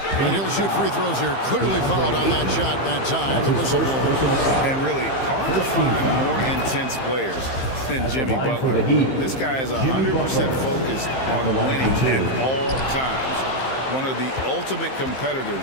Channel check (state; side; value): late; right; 15 ms